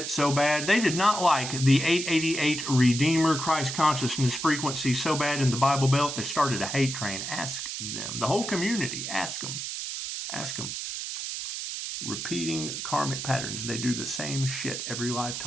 so bad. They did not like the 888 Redeemer Christ consciousness frequency so bad in the Bible Belt, they started a hate train. Ask them. The whole community, ask them. Ask them. Repeating karmic patterns. They do the same shit every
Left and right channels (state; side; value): noise; right; hiss, 5 dB below the sound